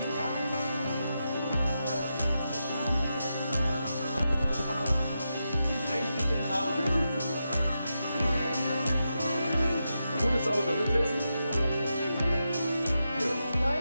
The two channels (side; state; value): both; inverted; correlation -0.87